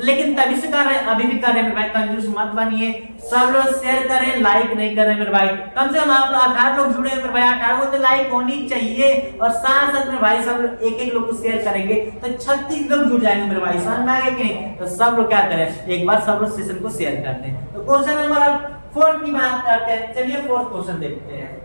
लेकिन तभी से कर रहे हैं, अभी भी कर रहे हैं मेरे भाई, कंजूस मत बनिए, सब लोग शेयर करें, लाइक नहीं कर रहे मेरे भाई। कम से कम आप लोग 18 लोग जुड़े हैं मेरे भाई, 18 को तो लाइक होनी चाहिए, और साथ साथ मेरे भाई सब लोग एक एक लोग को शेयर करेंगे तो 36 लोग जुड़ जाएंगे मेरे भाई, समझ में आ गया कि नहीं। तो सब लोग क्या करें, एक बार सब लोग सेशन को शेयर करते हैं। तो क्वेश्चन नंबर 4 की बात करते हैं, चलिए 4th क्वेश्चन देखते हैं।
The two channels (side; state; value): both; inverted; correlation -1.00